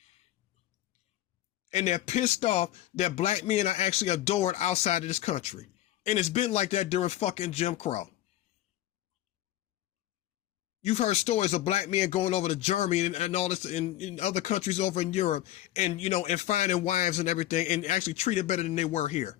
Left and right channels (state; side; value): quieter; right; 14.1 dB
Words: And they're pissed off that black men are actually adored outside of this country. And it's been like that during fucking Jim Crow. You've heard stories of black men going over to Germany and all this in other countries over in Europe and, and finding wives and everything and actually treated better than they were here.